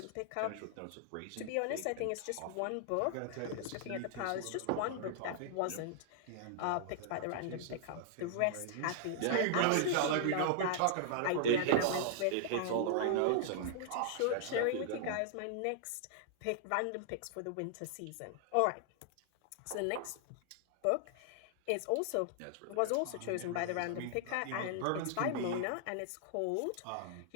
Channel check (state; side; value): different; both; correlation -0.01